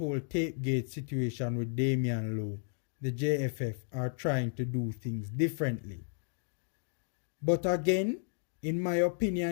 Tapegate situation with Damian Lowe, the JFF are trying to do things differently. But again, in my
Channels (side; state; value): right; silent; digital silence